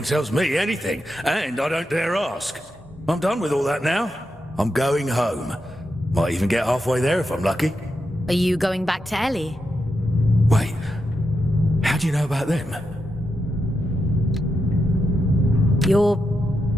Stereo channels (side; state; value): both; normal; correlation 0.86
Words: tells me anything, and I don't dare ask. I'm done with all that now. I'm going home. Might even get halfway there if I'm lucky. Are you going back to Ellie? Wait, how do you know about them? You're